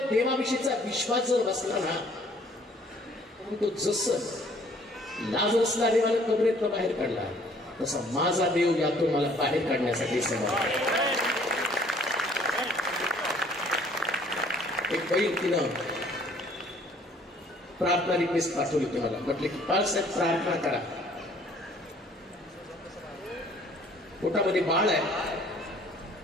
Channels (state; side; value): normal; both; correlation 0.58